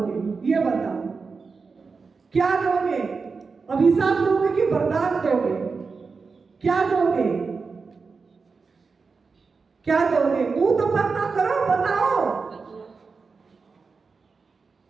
ये बताओ, क्या दोगे? अभिशाप दोगे कि वरदान दोगे? क्या दोगे? क्या दोगे? मुंह तो बंद ना करो, बताओ।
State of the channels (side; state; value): left; quieter; 4.7 dB